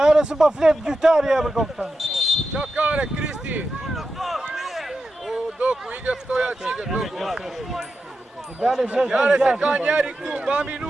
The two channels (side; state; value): both; normal; correlation 0.90